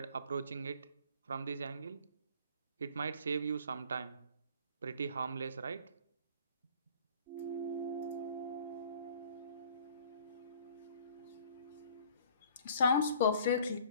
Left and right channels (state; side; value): inverted; both; correlation -0.52